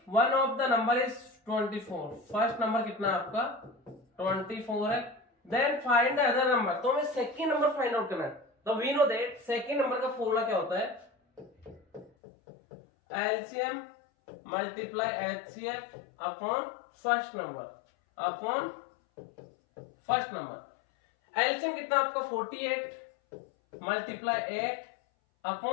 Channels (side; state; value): right; drops out; at 12.1 s